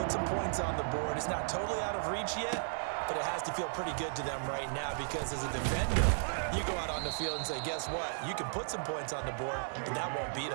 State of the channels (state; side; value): silent; left; digital silence